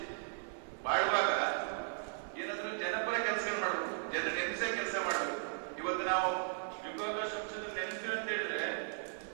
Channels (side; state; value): left; silent; 53 dB below the other